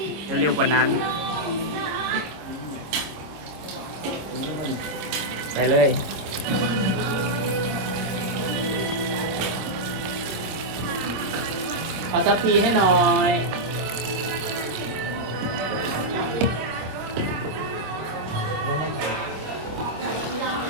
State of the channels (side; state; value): left; late; 25 ms